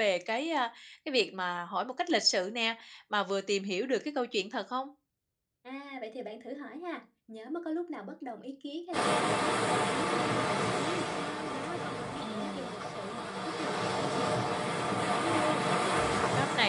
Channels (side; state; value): both; identical; correlation 1.00